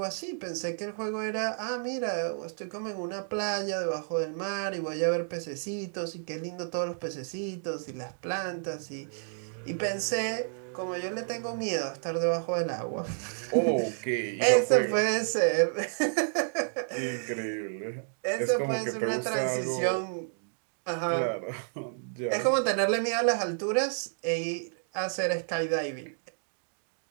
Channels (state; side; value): silent; left; digital silence